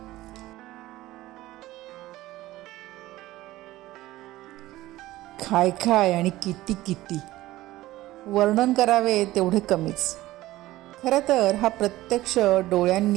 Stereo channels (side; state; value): left; quieter; 16.6 dB